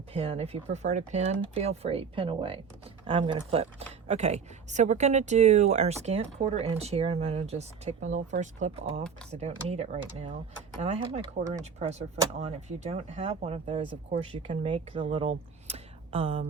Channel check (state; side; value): quieter; left; 6.2 dB